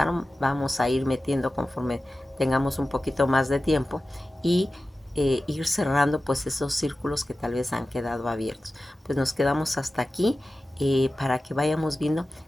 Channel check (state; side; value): normal; both; correlation 0.95